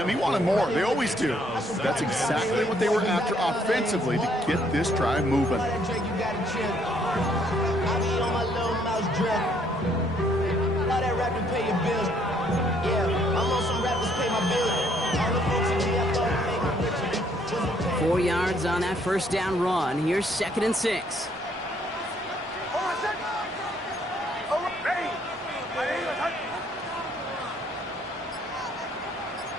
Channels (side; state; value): both; normal; correlation 0.67